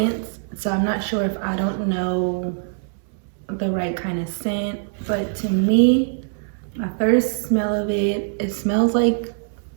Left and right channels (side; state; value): left; silent; 64 dB below the other